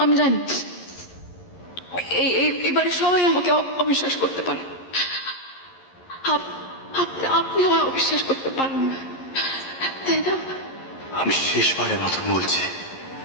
আমি জানি এবারে সবাই আমাকে অবিশ্বাস করতে পারে। আপনি আমায় অবিশ্বাস করতে পারেন না, তাই না? আমি শেষবারের মতন বলছি,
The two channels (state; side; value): late; right; 11 ms